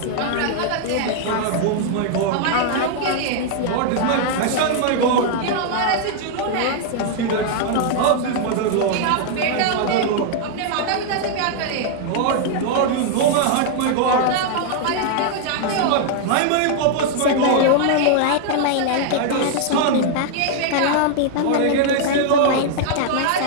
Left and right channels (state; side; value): different; both; correlation 0.00